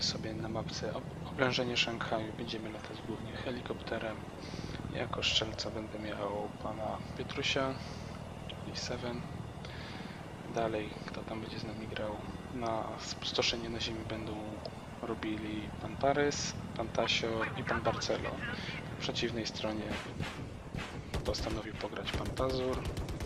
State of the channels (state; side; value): identical; both; correlation 1.00